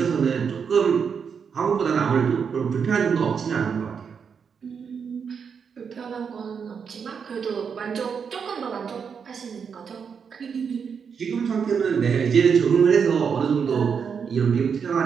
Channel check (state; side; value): quieter; left; 6.5 dB